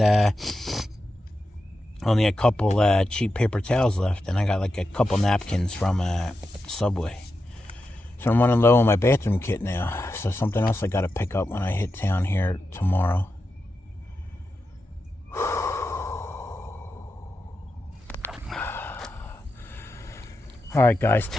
only a couple cheap paper towels left, and I got like a couple napkins from Subway. So I'm running low on my bathroom kit now. So something else I got to pick up when I hit town here tomorrow. All right, guys,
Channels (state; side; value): normal; both; correlation 0.89